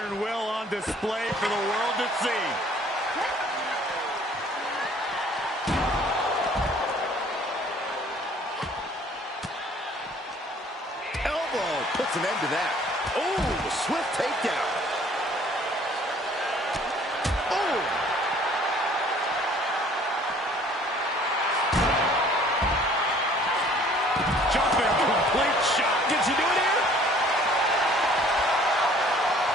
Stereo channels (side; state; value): both; normal; correlation 0.55